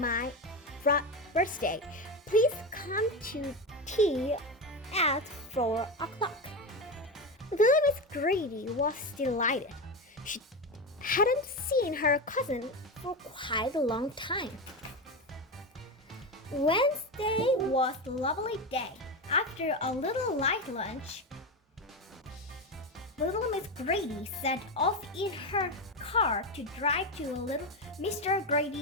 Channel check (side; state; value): both; normal; correlation 0.16